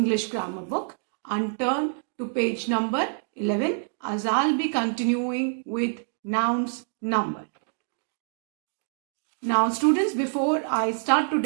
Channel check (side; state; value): left; silent; digital silence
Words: grammar book and turn to page number 11 as I'll be continuing with nouns number. Now students, before I start